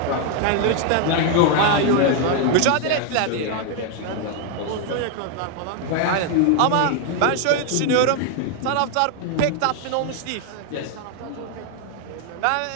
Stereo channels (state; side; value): different; both; correlation 0.00